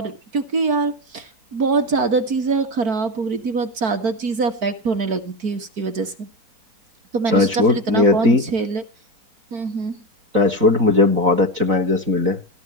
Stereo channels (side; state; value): left; late; 4.5 ms